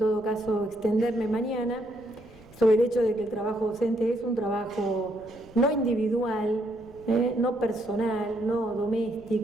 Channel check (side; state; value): left; noise; rumble, 24 dB below the sound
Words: caso extenderme mañana, sobre el hecho de que el trabajo docente es un trabajo no individual, no personal, no